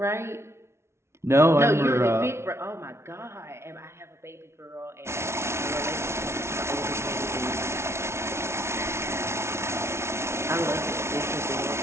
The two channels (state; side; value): late; left; 0.13 ms